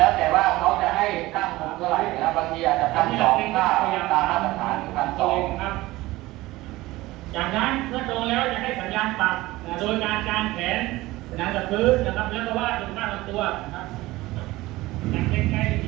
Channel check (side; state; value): left; quieter; 18.7 dB